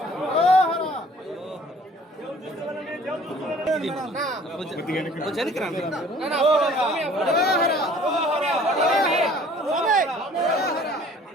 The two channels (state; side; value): normal; both; correlation 0.53